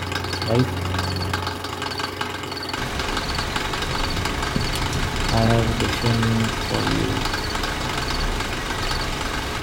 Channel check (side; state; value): both; identical; correlation 1.00